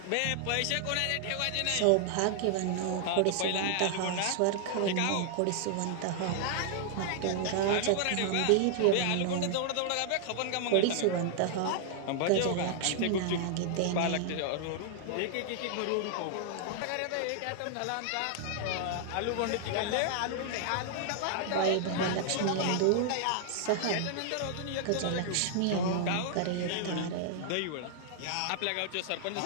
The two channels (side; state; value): both; different; correlation 0.00